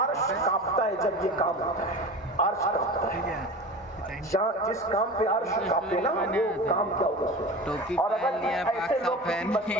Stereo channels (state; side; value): normal; both; correlation 0.33